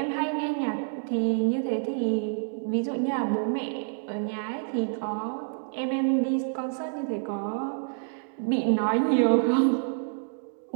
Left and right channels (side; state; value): left; silent; digital silence